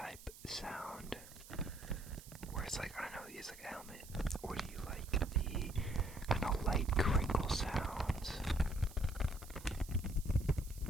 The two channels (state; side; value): noise; right; hiss, 18 dB below the sound